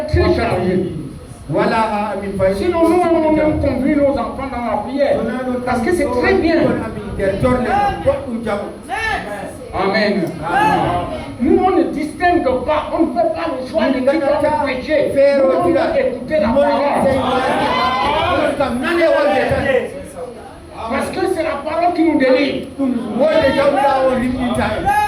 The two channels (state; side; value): identical; both; correlation 1.00